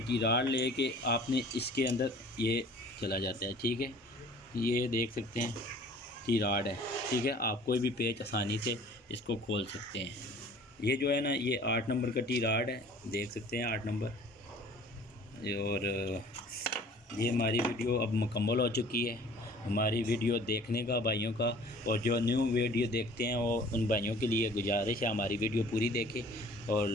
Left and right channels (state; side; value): normal; both; correlation 0.49